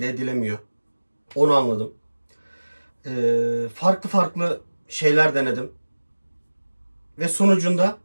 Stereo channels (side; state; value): both; inverted; correlation -1.00